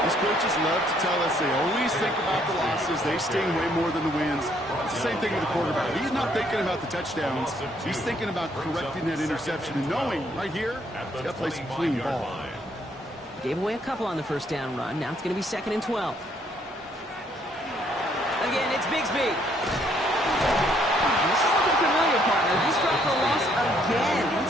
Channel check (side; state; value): both; normal; correlation 0.68